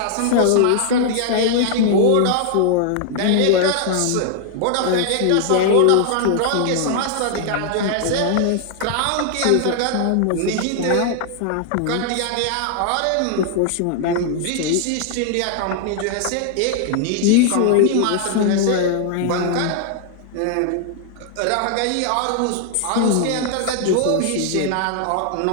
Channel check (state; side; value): different; both; correlation 0.00